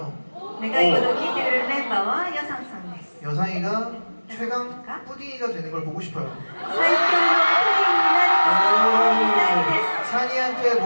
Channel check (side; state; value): both; inverted; correlation -1.00